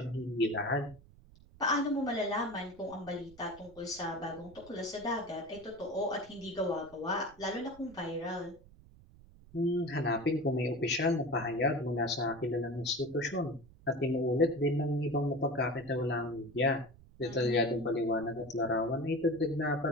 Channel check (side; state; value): right; noise; rumble, 23 dB below the sound